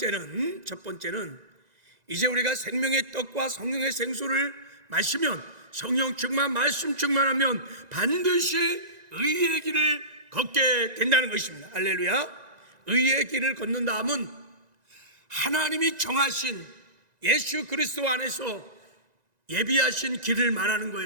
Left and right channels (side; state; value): left; late; 1.9 ms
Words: 이제 우리가 생명의 떡과 성령의 생수를 마시면, 성령 충만, 말씀 충만하면 반드시 의의 길을 걷게 된다는 것입니다. 할렐루야. 의의 길을 걷는 다음은 하나님이 정하신 예수 그리스도 안에서 예비하신 길을 말하는